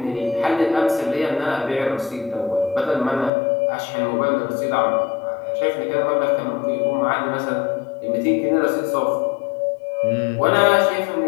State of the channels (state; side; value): drops out; right; at 3.3 s